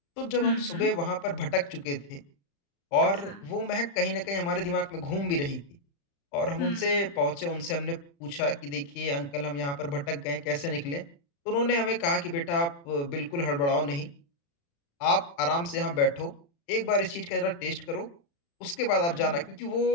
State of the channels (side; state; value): right; late; 35 ms